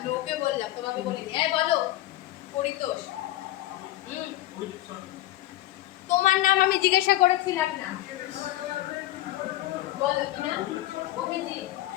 ওকে বললাম, তোমাকে বলিনি। এই বলো, পরিতোষ। তোমার নাম আমি জিজ্ঞাসা করেছিলাম না, বলো কি না? অভিজিৎ।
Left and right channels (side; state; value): right; quieter; 15.8 dB